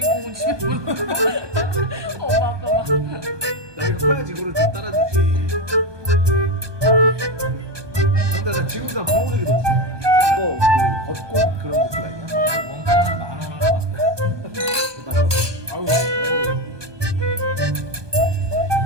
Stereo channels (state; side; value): late; left; 1.2 ms